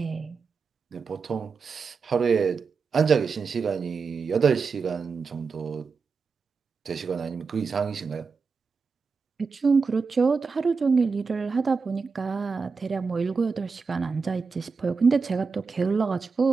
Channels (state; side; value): quieter; left; 4.9 dB